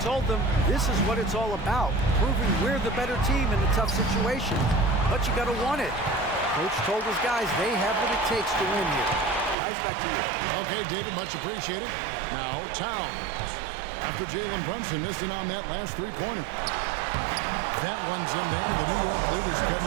told them this is what it's all about, proving we're the better team in a tough situation. But you got to want it. Coach told his guys they have what it takes to win here. Guys, back to you. Okay, David, much appreciated. Now, Towns. After Jalen Brunson missed it on that last three-pointer. That one's in there. The New York lead is cut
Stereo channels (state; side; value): drops out; left; at 9.6 s